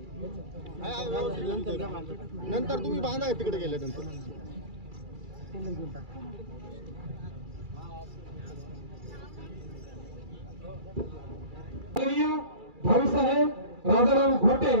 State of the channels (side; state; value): left; late; 2.3 ms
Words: नंतर तुम्ही बांधा तिकडे गेल्यानंतर. भाऊसाहेब राजाराम घोटे